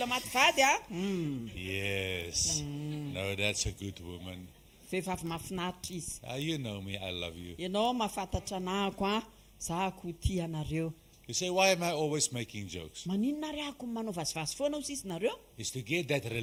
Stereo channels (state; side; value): identical; both; correlation 1.00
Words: maty vady a. yes. No, that's a good woman. Vehivavy mahafinaritra izy. You know me, I love you. Ianao mahafantatra anahako a. Za ko tia anareo. You say, why am I always making jokes? Maninona ry ako manao vazivazy foana ho sisy nareo? It's to get that